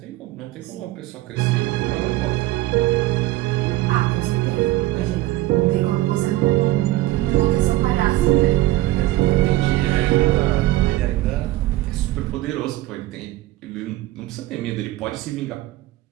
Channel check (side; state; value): left; quieter; 16.8 dB